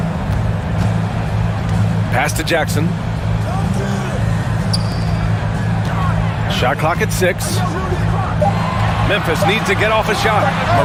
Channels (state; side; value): identical; both; correlation 1.00